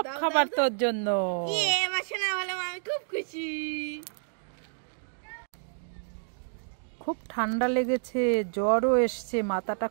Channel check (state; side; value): silent; left; digital silence